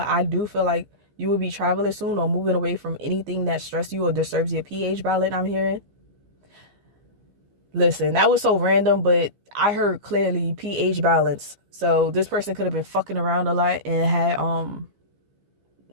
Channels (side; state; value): left; late; 15 ms